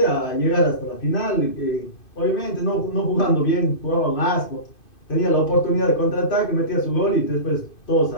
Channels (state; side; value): late; right; 2.5 ms